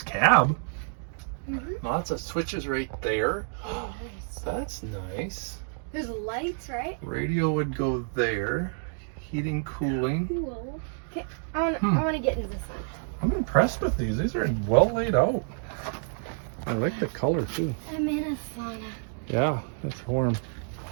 cab. Mm-hmm. Lots of switches right there. Oh, nice. That's nice. There's lights, right? Radio would go there. Heating, cooling. Cool. Okay, I want to get into this one. I'm impressed with these. These are well laid out. I like the color too. I'm in a sauna. Yeah, it's warm.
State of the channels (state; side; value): silent; left; 59 dB below the other